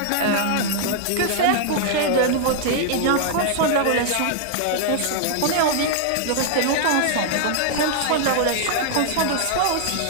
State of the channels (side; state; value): both; different; correlation -0.01